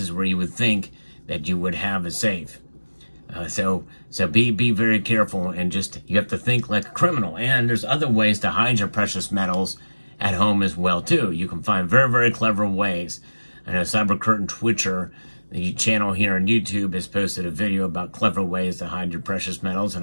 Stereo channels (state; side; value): inverted; both; correlation -1.00